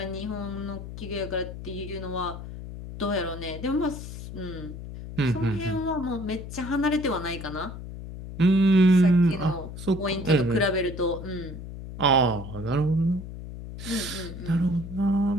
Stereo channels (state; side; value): noise; left; hum, 10 dB below the sound